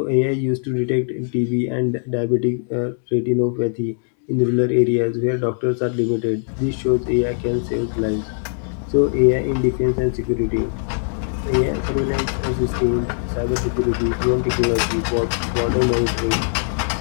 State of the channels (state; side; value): silent; right; digital silence